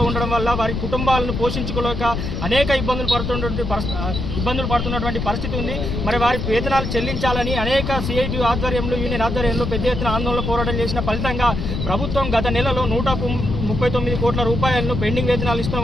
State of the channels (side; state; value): left; noise; rumble, 3 dB below the sound